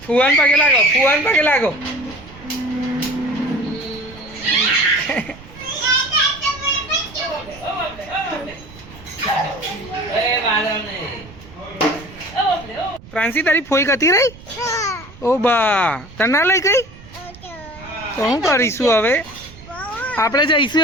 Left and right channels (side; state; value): right; noise; rumble, 19 dB below the sound